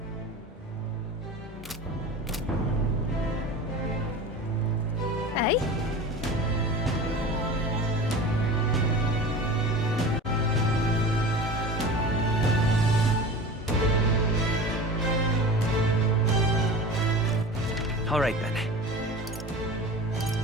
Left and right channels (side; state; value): both; normal; correlation 0.35